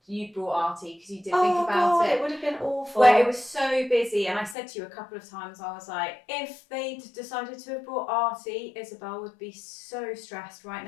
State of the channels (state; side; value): drops out; right; at 4.5 s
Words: you brought Artie because you did think about God, it would have been awful. Where it was so busy, and I said to you a couple of times, I was like, if they'd decided to have brought Artie, Isobel would be so stressed right